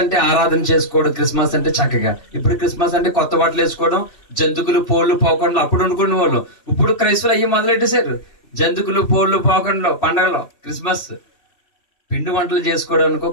అంటే ఆరాధన చేసుకోవడం, క్రిస్మస్ అంటే చక్కగా. ఇప్పుడు క్రిస్మస్ అంటే కొత్త బట్టలు వేసుకోవడం, జంతుకులు పోళ్ళు పోకుండా అప్పుడు అనుకునే వాళ్ళు. ఇప్పుడు క్రైస్తవులు అయ్యి మొదలెట్టేశారు. జంతుకులు పోళ్ళు పోకుండా పండగలో క్రిస్మస్ పిండి వంటలు చేసుకోవడానికో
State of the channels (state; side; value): late; right; 2.7 ms